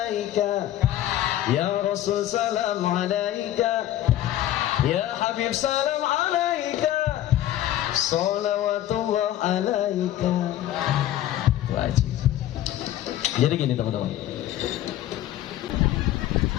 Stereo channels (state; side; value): quieter; right; 13.0 dB